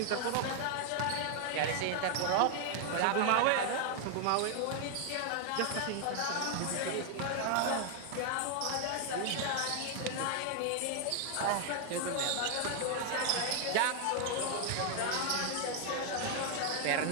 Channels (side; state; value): both; different; correlation 0.00